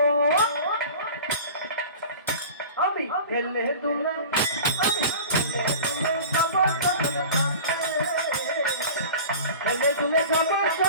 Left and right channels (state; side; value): inverted; both; correlation -0.38